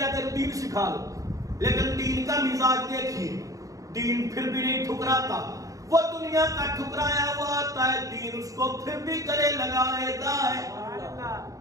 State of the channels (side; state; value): left; late; 0.16 ms